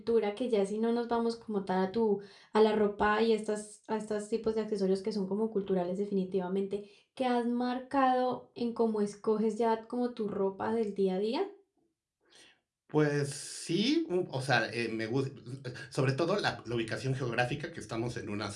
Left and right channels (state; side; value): identical; both; correlation 1.00